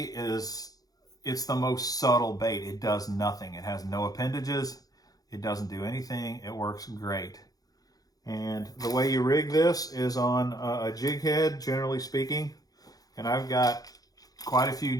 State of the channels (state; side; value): late; right; 0.18 ms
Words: it's the most subtle bait. It does nothing. It has no appendages. It doesn't do anything. It works great. And the way you rig this is on a jig head, generally speaking. And I've got quite a few